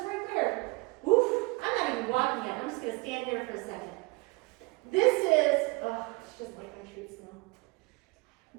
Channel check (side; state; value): left; quieter; 26.4 dB